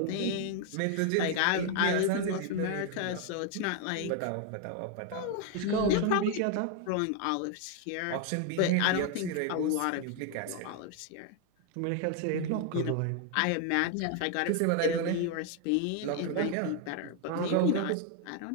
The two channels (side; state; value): both; different; correlation 0.01